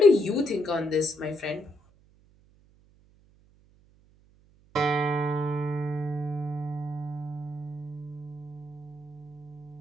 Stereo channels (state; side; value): noise; right; hum, 29 dB below the sound